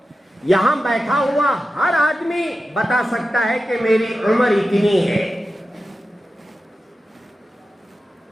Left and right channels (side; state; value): both; normal; correlation 0.92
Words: یہاں بیٹھا ہوا ہر آدمی بتا سکتا ہے کہ میری عمر اتنی ہے.